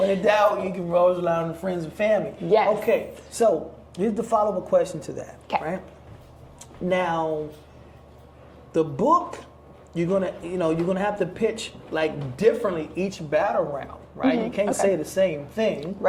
in doubt, you can always rely on the friends and family. Yes. Okay, so here's the follow-up question to that. Okay. Right? Now, the book, you're gonna have to pitch like differently each battle round, right? You can't say the same thing.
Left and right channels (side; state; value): both; identical; correlation 1.00